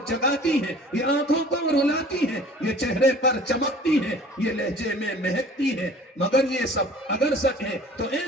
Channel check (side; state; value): both; normal; correlation 0.47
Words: جگاتی ہے، یہ آنکھوں کو رلاتی ہے، یہ چہرے پر چمکتی ہے، یہ لہجے میں مہکتی ہے۔ مگر یہ سب اگر سچ ہے تو اے